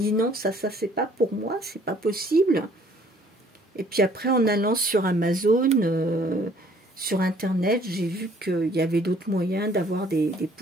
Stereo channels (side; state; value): both; normal; correlation 0.59